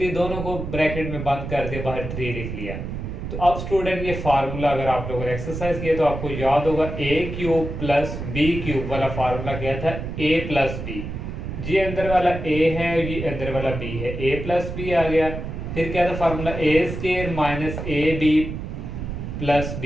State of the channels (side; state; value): right; noise; rumble, 6 dB below the sound